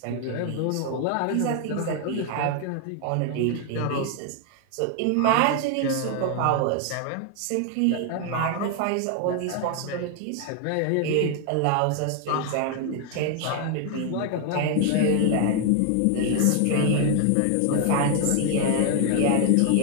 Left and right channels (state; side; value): different; both; correlation 0.00